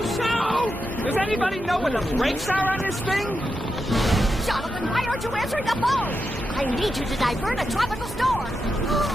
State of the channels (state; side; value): normal; both; correlation 0.87